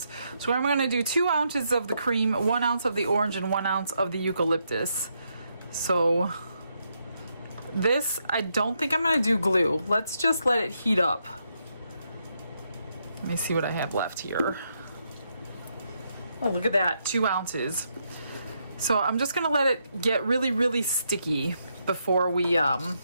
So I'm gonna do 2 ounces of the cream, 1 ounce of the orange, and 1 ounce of the eucalyptus. So this, I don't think I'm gonna do glue. Let's just let it heat up. Let me see what I have left here. Oh, look at that, 2 ounces. So I'm just gonna let it get really, really sticky before we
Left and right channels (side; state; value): both; inverted; correlation -0.79